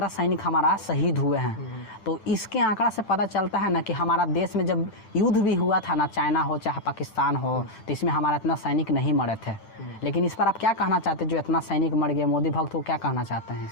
सैनिक हमारा शहीद हुए हैं। तो इसके आंकड़ा से पता चलता है ना कि हमारा देश में जब युद्ध भी हुआ था ना, चाइना हो चाहे पाकिस्तान हो, तो इसमें हमारा इतना सैनिक नहीं मरे थे। लेकिन इस पर आप क्या कहना चाहते हैं, जो इतना सैनिक मर गया, मोदी भक्त को क्या कहना चाहते हैं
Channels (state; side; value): late; right; 9.1 ms